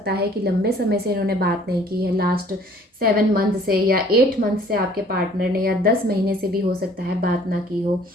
है कि लंबे समय से इन्होंने बात नहीं की है, लास्ट 7 मंथ से या 8 मंथ से आपके पार्टनर ने, या 10 महीने से भी हो सकता है बात ना की हो।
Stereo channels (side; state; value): both; normal; correlation 0.55